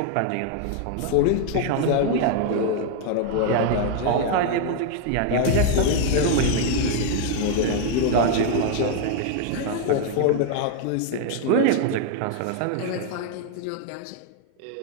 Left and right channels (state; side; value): different; both; correlation 0.00